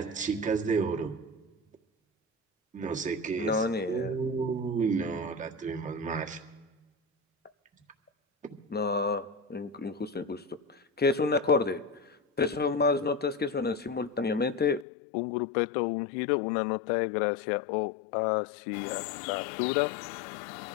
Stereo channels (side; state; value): right; drops out; at 14.9 s